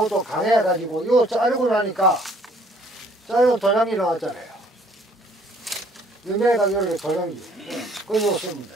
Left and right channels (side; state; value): both; normal; correlation 0.61